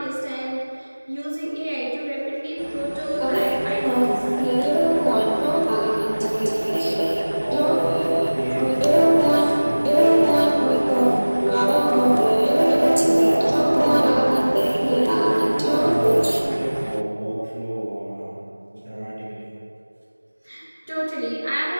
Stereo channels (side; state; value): both; inverted; correlation -1.00